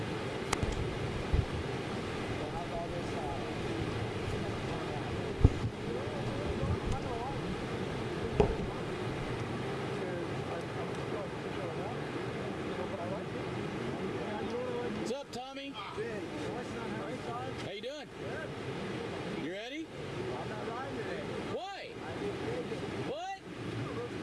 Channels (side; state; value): both; identical; correlation 1.00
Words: What's up, Tommy? How you doing? You ready? I'm not riding today. Why? What?